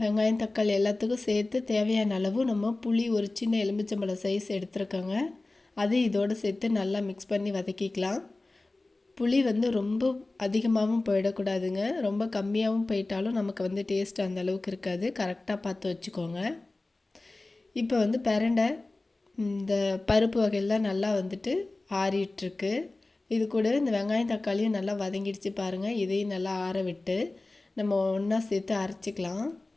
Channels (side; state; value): right; quieter; 3.1 dB